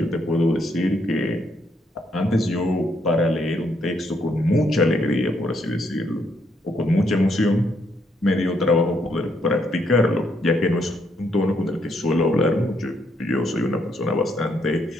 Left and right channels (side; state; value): both; normal; correlation 0.74